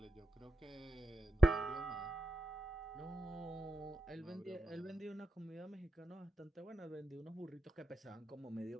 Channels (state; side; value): normal; both; correlation 0.90